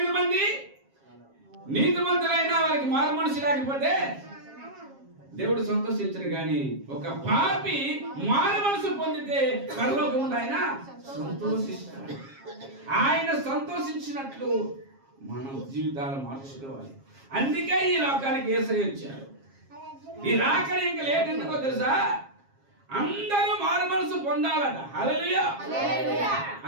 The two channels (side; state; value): left; late; 7.4 ms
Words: మంది నీతిమంతులైనా వారికి మారు మనసు లేకపోతే దేవుడు సంతోషించడు, కానీ ఒక పాపి మారు మనసు పొందితే పరలోకముందు ఆయన సంతోషిస్తాడు. ఆయన సంతోషించినట్లు మనం జీవితాలు మార్చుకోవాలి. అందుకే ఈ లోకానికి యేసయ్య వచ్చాడు. ఈ రాకడ ఇంకా లేట్ ఎందుకో తెలుసా? అందరూ మారు మనసు పొందాలట. హల్లెలూయా.